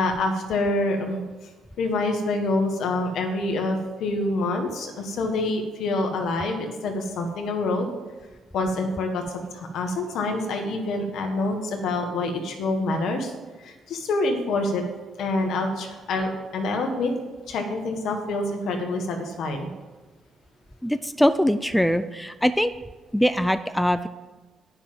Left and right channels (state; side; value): normal; both; correlation 0.74